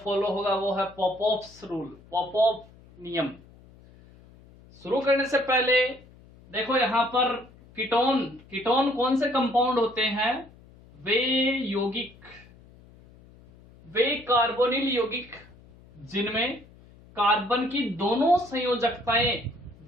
होगा वो है पॉपऑफ्स रूल, पॉपऑफ नियम। शुरू करने से पहले देखो यहाँ पर कीटोन कीटोन कौन से कंपाउंड होते हैं? वे यौगिक, वे कार्बोनिल यौगिक जिनमें कार्बन की दोनों संयोजकताएं,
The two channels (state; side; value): noise; left; hum, 24 dB below the sound